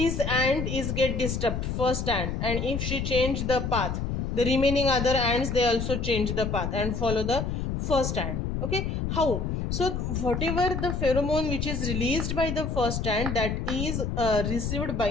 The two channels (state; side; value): noise; left; rumble, 2 dB below the sound